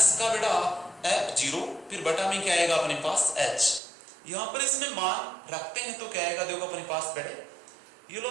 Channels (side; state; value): left; drops out; at 3.8 s